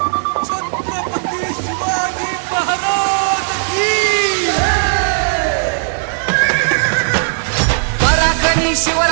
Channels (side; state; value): left; silent; digital silence